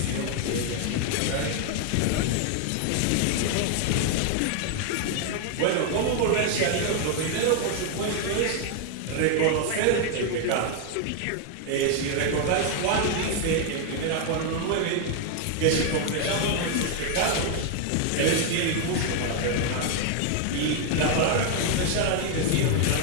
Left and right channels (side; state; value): both; different; correlation 0.00